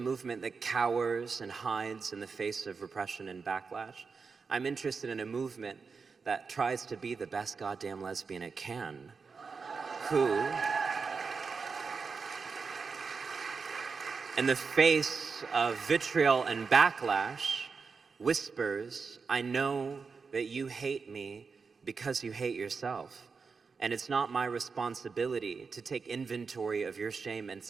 that cowers and hides in the face of repression and backlash. I'm interested in a movement that tries to be the best goddamn lesbian it can, who, in the face of vitriol and backlash, whispers, I know that you hate me because you hate yourself. And it's not my responsibility to take inventory of your shame and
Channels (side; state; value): left; quieter; 5.1 dB